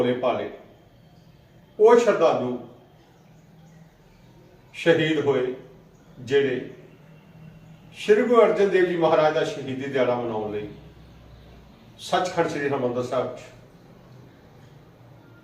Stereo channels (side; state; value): both; identical; correlation 1.00